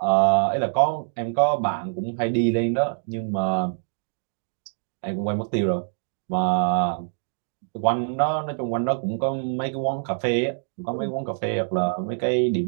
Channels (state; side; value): silent; left; digital silence